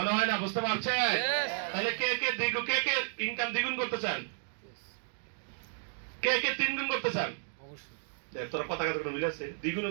হয় না বুঝতে পারছেন? Yes. তাহলে কে কে ইনকাম দ্বিগুণ করতে চান? কে কে 3 গুণ করতে চান? অবশ্যই। দেখ তোরা কথা কথা মিলে আছে, দ্বিগুণ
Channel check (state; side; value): silent; left; digital silence